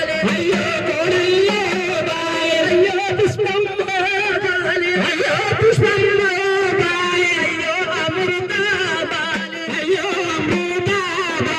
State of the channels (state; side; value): identical; both; correlation 1.00